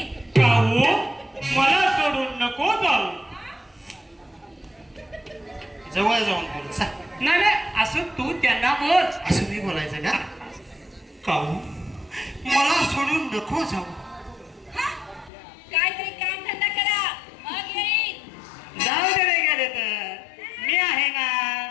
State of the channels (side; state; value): right; drops out; at 15.3 s